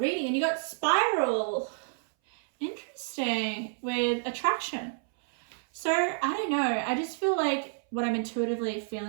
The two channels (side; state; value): left; silent; 58 dB below the other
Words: And you got Spiral. Interesting. With attraction. So, I don't know. I just feel like what I'm intuitively